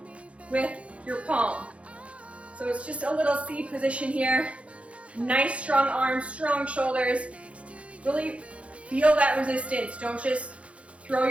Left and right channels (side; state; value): left; late; 0.062 ms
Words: with your palm. So it's just a little C position here. Nice strong arms, strong shoulders. Really feel that resistance. Don't just throw